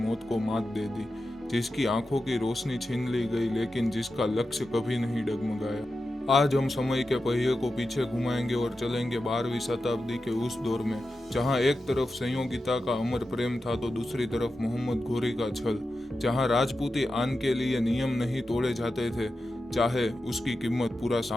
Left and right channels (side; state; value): both; normal; correlation 0.91